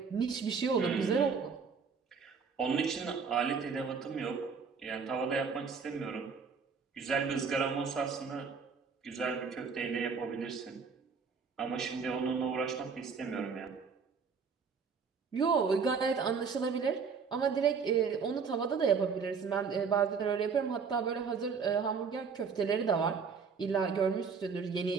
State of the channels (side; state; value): left; quieter; 5.6 dB